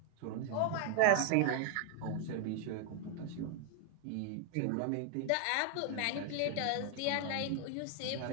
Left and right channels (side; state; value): both; different; correlation 0.00